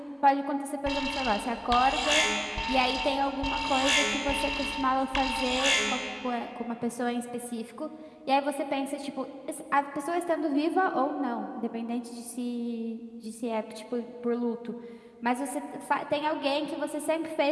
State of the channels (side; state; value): both; identical; correlation 1.00